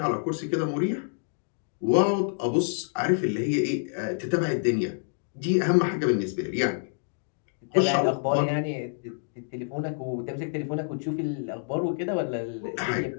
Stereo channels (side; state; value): right; silent; digital silence